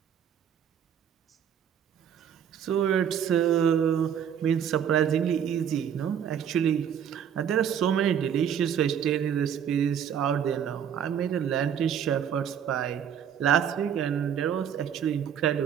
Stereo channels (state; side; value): quieter; left; 8.7 dB